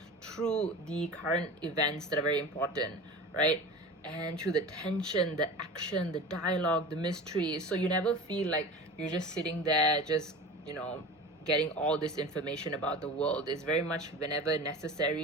through the current events that are very important, right? And through the tension, the action, the dialogue, the mystery. So you never feel like you're just sitting there, just, you know, getting all this information about the world. Is very much whenever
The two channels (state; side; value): normal; both; correlation 0.33